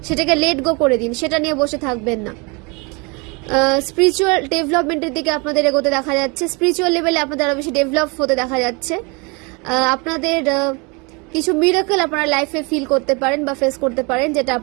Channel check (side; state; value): left; quieter; 29.5 dB